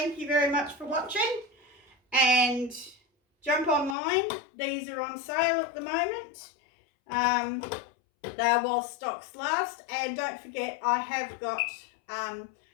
you very much for watching, and jump online. These are on sale at the moment. They are while stocks last, and don't forget I have got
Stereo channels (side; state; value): right; drops out; at 4.0 s